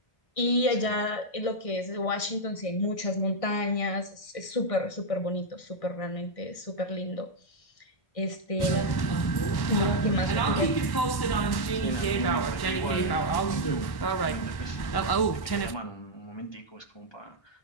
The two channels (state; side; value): late; right; 1.1 ms